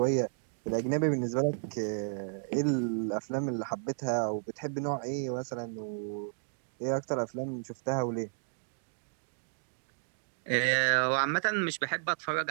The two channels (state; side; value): silent; left; digital silence